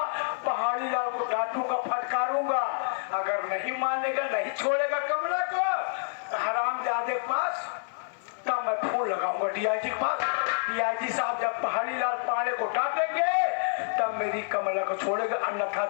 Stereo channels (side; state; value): right; silent; 56 dB below the other